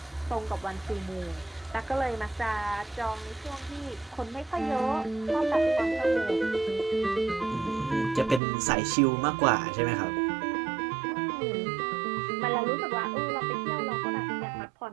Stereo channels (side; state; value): left; drops out; at 8.4 s